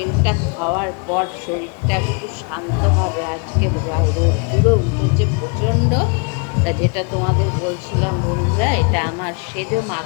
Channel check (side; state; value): right; quieter; 34.9 dB